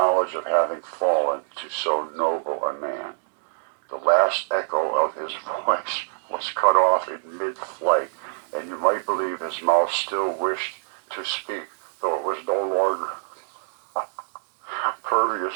of having fallen to so noble a man." The last echo of his voice was cut off in mid-flight, and you might believe his mouth still wished to speak, though it was no longer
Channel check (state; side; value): silent; left; digital silence